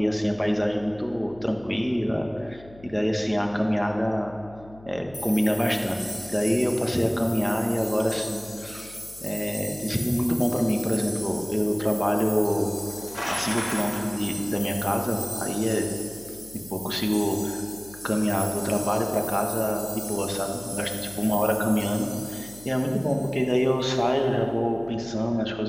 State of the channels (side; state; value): left; noise; hum, 21 dB below the sound